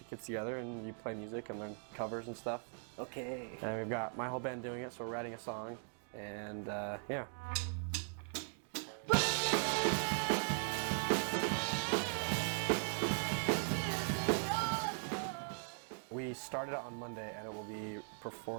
of kids together and you play music and learn covers and stuff. Okay. And we've got my whole band doing it, so we're writing a song, and yeah. We started it on Monday, and we're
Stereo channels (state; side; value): silent; left; 51 dB below the other